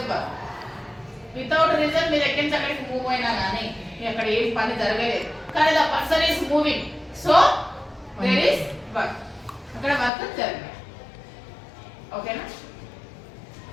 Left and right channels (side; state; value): right; drops out; at 10.1 s